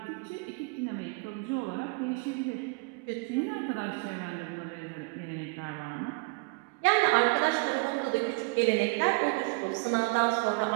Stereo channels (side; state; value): left; quieter; 29.6 dB